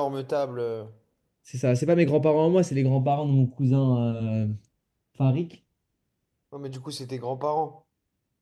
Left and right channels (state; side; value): identical; both; correlation 1.00